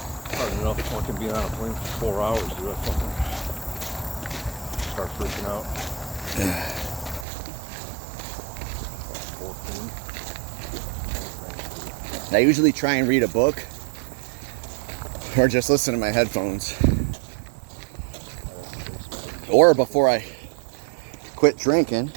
Hard enough fucking being on a plane for 4 hours, dude. I fucking start freaking out. 14. I usually try and read a book or just listen to my headphones. Or before I quit drinking,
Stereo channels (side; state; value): left; drops out; at 7.2 s